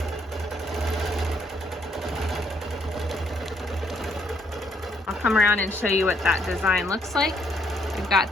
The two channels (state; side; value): normal; both; correlation 0.69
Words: I'll come around and show you what that design looks like. We've got